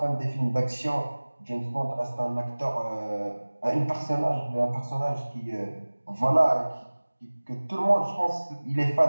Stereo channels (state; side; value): inverted; both; correlation -1.00